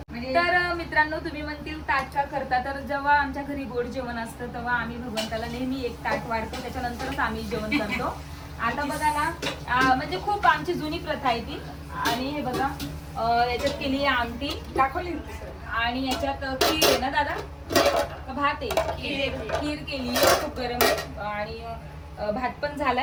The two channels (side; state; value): both; identical; correlation 1.00